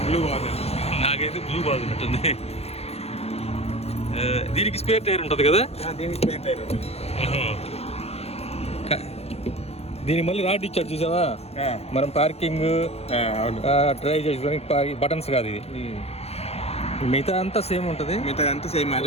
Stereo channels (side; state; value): right; late; 0.30 ms